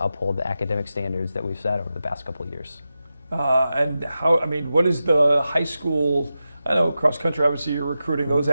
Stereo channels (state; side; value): inverted; both; correlation -0.91